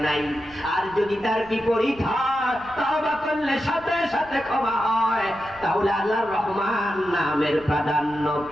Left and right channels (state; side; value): noise; right; rumble, 22 dB below the sound